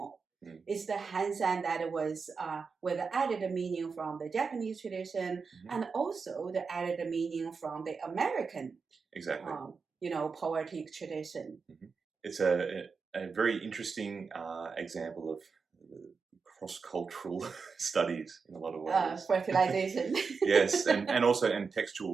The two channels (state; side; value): quieter; left; 5.1 dB